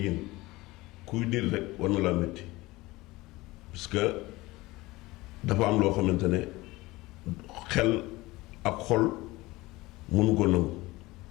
kuy nit rek war na laa métti parce que dafa am loo xamante ne xel ak xol mënu ko nangu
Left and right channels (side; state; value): right; quieter; 20.3 dB